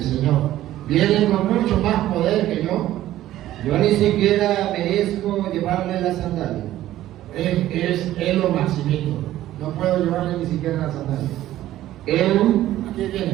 Señor, viene con mucho más poder que yo. Yo ni siquiera merezco llevarle la sandalia. Es lo maximito. No puedo llevarle ni siquiera la sandalia. Aquí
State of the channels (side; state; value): left; quieter; 13.9 dB